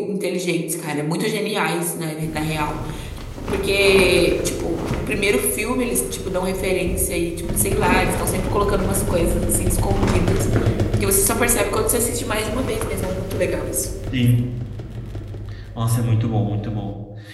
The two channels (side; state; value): both; identical; correlation 1.00